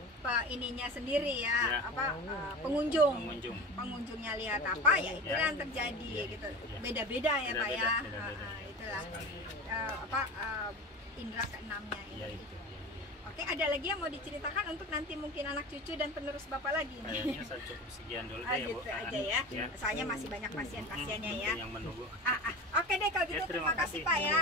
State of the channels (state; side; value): normal; both; correlation 0.32